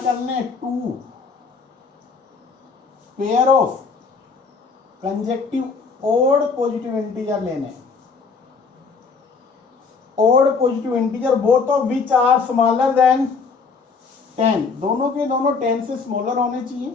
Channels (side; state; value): right; quieter; 4.9 dB